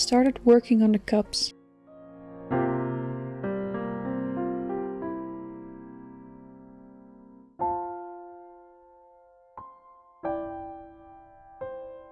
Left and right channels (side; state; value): both; identical; correlation 1.00